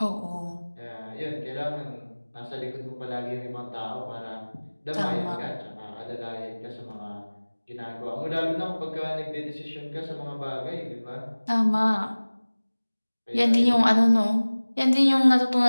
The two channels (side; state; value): both; inverted; correlation -1.00